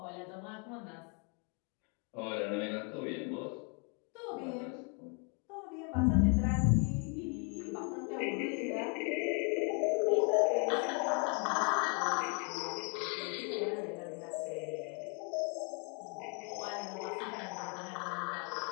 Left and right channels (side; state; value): right; quieter; 34.9 dB